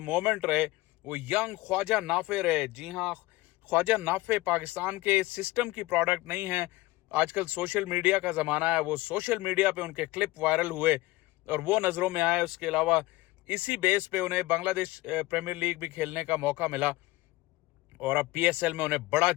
मोमेंट रहे वो यंग ख्वाजा नाफे रहे। जी हाँ, ख्वाजा नाफे पाकिस्तान के सिस्टम की प्रोडक्ट नहीं है। आजकल सोशल मीडिया का ज़माना है, वो सोशल मीडिया पे उनके क्लिप वायरल हुए और वो नज़रों में आए। उसके अलावा इसी बेस पे उन्हें बांग्लादेश प्रीमियर लीग भी खेलने का मौका मिला और अब PSL में उन्हें बड़ा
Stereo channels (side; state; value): right; quieter; 19.6 dB